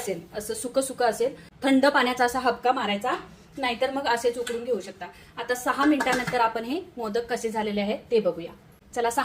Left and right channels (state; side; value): identical; both; correlation 1.00